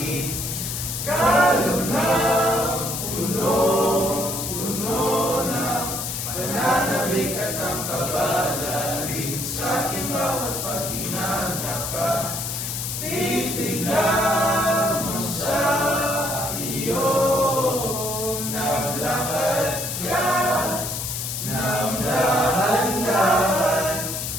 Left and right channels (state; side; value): noise; left; hiss, 4 dB below the sound